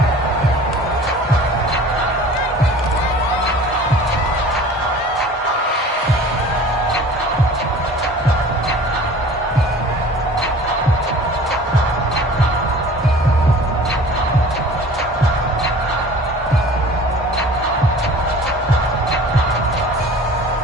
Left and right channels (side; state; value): both; normal; correlation 0.44